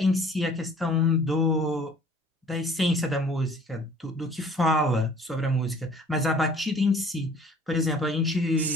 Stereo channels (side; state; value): both; normal; correlation 0.52